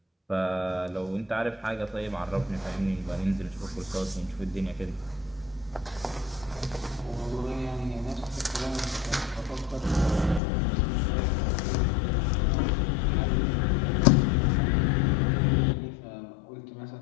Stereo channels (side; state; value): right; drops out; at 10.4 s